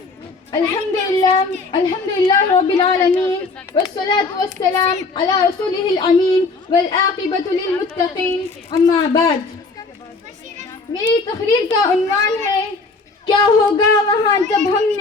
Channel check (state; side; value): quieter; right; 3.9 dB